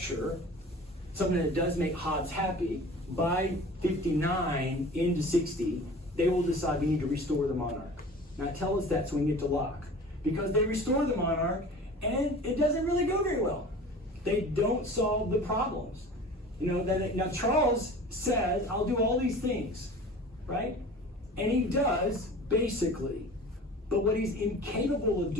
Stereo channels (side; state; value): both; normal; correlation 0.41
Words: something that does make Hobbes happy, by 59 into 60, they will decide we need to restore the monarch. Now tell us that so we can get to Locke. Because they restore the monarch, and it doesn't really go very well. They don't solve the problems. Now Charles says, I'll do all these things, right? And he does, basically. But what he's incapable of